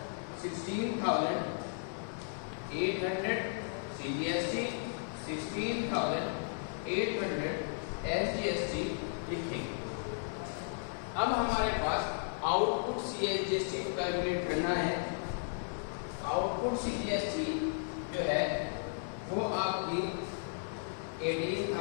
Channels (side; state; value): right; silent; digital silence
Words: 16,800 सीजीएसटी, 16,800 एसजीएसटी लिखेंगे। अब हमारे पास आउटपुट सीजीएसटी को कैलकुलेट करना है। आउटपुट सीजीएसटी जो है वो आपकी